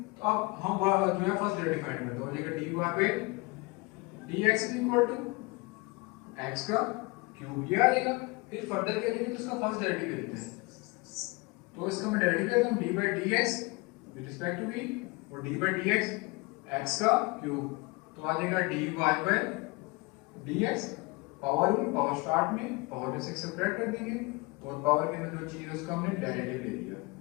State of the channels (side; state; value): right; quieter; 25.7 dB